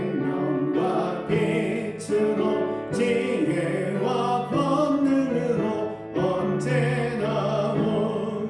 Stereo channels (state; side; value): identical; both; correlation 1.00